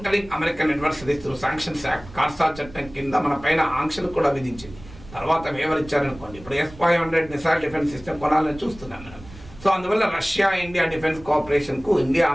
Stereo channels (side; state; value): right; noise; rumble, 18 dB below the sound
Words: American adversaries through sanctions act, కార్సా చట్టం కింద మన పైన ఆంక్షలు కూడా విధించింది. తర్వాత వివరించారనుకోండి, ఇప్పుడు S-500 మిసైల్ డిఫెన్స్ సిస్టమ్ కొనాలని చూస్తున్నాం మనం. సో అందువల్ల రష్యా ఇండియా డిఫెన్స్ కోఆపరేషన్కు ఇండియా